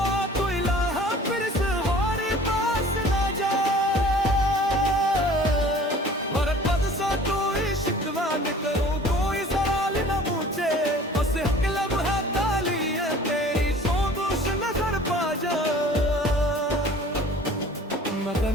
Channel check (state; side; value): normal; both; correlation 0.48